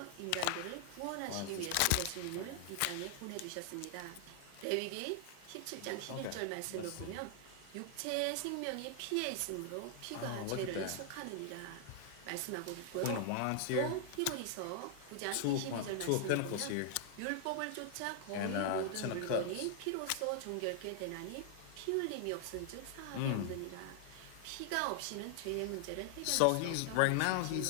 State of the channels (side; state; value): both; different; correlation 0.00